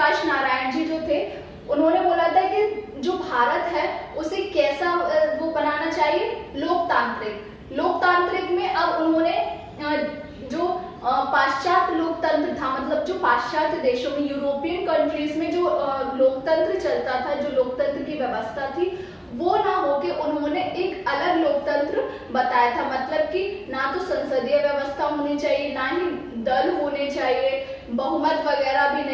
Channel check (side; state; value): both; identical; correlation 1.00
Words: नारायण जी जो थे उन्होंने बोला था कि जो भारत है उसे कैसा वो बनाना चाहिए? लोकतांत्रिक में अब उन्होंने जो पाश्चात्य लोकतंत्र था, मतलब जो पाश्चात्य देशों में, यूरोपियन कंट्रीज में जो लोकतंत्र चलता था, जो लोकतंत्र की व्यवस्था थी, वो ना होके उन्होंने एक अलग लोकतंत्र बताया था। मतलब कि ना तो संसदीय व्यवस्था होनी चाहिए, ना ही दल होने चाहिए, बहुमत वगैरह भी